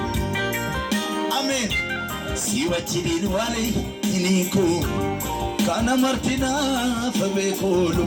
amen siwachidin wale iniko kana martina fabeko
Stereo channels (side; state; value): both; identical; correlation 1.00